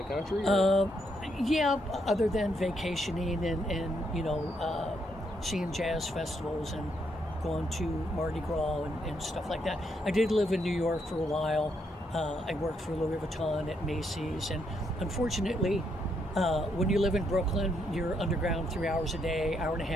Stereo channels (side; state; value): both; normal; correlation 0.76